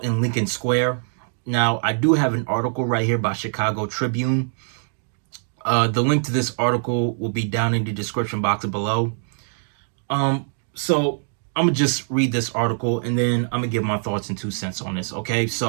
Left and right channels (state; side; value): silent; left; digital silence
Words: in Lincoln Square. Now, I do have an article right here by Chicago Tribune. The link to this article will be down in the description box below. So I'm gonna just read this article and then I'm gonna give my thoughts and 2 cents on this. Okay,